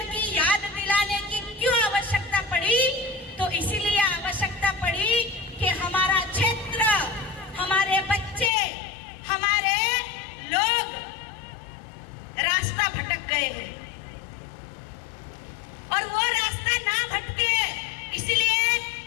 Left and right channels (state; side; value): drops out; right; at 8.5 s